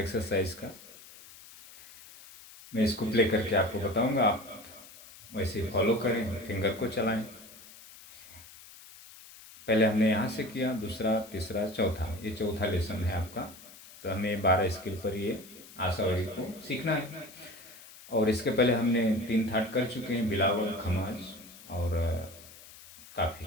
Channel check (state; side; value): noise; left; hiss, 19 dB below the sound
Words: का। मैं इसको प्ले करके आपको बताऊंगा, आप वैसे फॉलो करें, फिंगर को चलाएं। पहले हमने यहाँ से किया, दूसरा, तीसरा, चौथा, ये चौथा लेसन है आपका। तो हमें 12 स्केल पर ये आशावरी को सीखना है। और इसके पहले हमने 3 थाट कर चुके हैं, बिलावल, खमाज और काफ़ी।